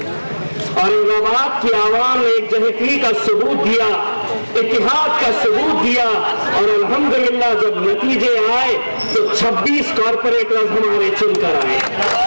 औरंगाबाद की आवाम ने एक जहती का सबूत दिया, इत्तेहाद का सबूत दिया और अल्हम्दुलिल्लाह जब नतीजे आए तो 26 कॉर्पोरेटर्स हमारे चुनकर आए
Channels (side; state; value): both; inverted; correlation -1.00